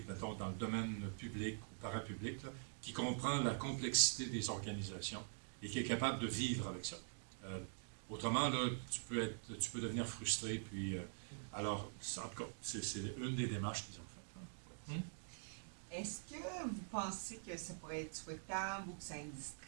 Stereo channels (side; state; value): left; silent; digital silence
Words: mettons, dans le domaine public ou parapublic, là, qui comprend la complexité des organisations et qui est capable de vivre avec ça. Autrement, là, tu peux devenir frustré. Puis, alors, en tout cas, c'est une des démarches qu'ils ont faites. Est-ce que vous pensez que ça pourrait être souhaitable ou que ça